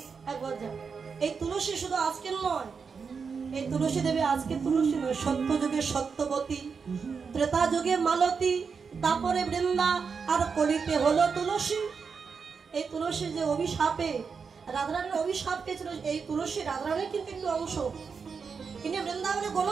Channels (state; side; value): quieter; left; 5.6 dB